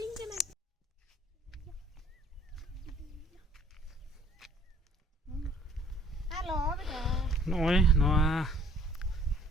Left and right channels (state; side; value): normal; both; correlation 0.57